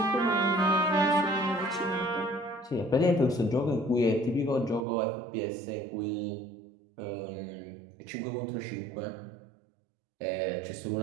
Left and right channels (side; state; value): left; drops out; at 4.9 s